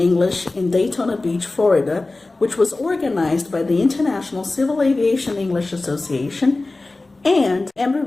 in Daytona Beach, Florida, which was organized by the International Civil Aviation English Association and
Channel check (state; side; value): quieter; right; 3.2 dB